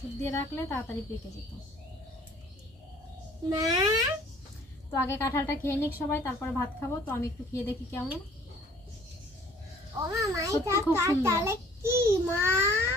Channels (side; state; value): both; normal; correlation 0.55